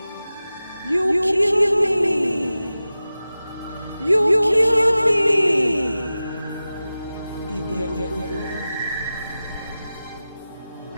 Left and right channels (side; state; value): both; inverted; correlation -0.95